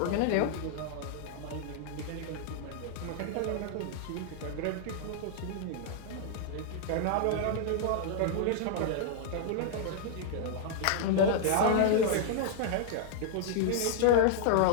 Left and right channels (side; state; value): both; different; correlation -0.01